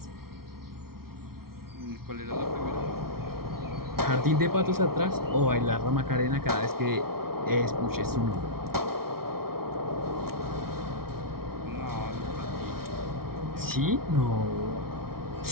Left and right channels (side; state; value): left; late; 0.94 ms